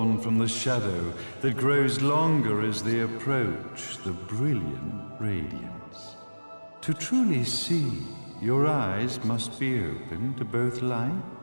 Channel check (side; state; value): both; inverted; correlation -1.00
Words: from the shadow that grows longer as they approach the brilliant radiance. To truly see, your eyes must be open to both